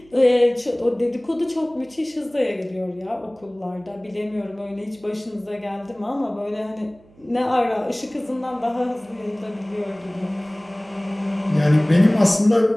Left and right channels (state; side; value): noise; right; hum, 28 dB below the sound